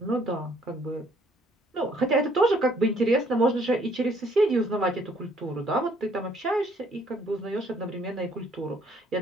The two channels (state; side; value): normal; both; correlation 0.64